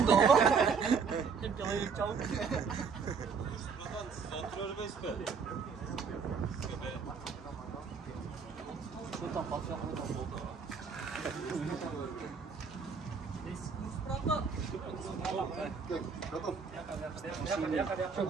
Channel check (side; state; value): left; quieter; 5.7 dB